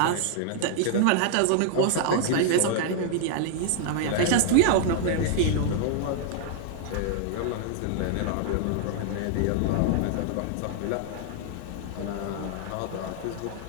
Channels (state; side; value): different; both; correlation -0.01